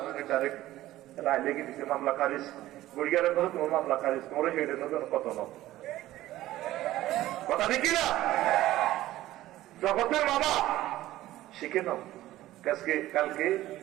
আমি ডাইরেক্ট রায় লেগে দিছে মামলা খারিজ গুড়িয়ারের কথা তোমার মামলা খারিজ তোমার হেডে নতুন কত ন কথা দেখি না জগতের বাবা শিখে নাও কালকে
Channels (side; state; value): left; quieter; 15.3 dB